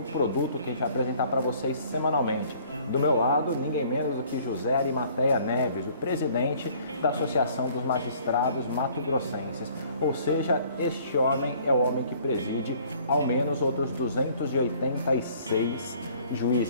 produto que a gente vai apresentar para vocês semanalmente. Do meu lado, ninguém menos do que José Arimateia Neves, o presidente da Associação dos Magistrados Mato-Grossenses. Ou seja, este homem é o homem que preside ao menos outros 286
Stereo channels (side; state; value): both; inverted; correlation -0.57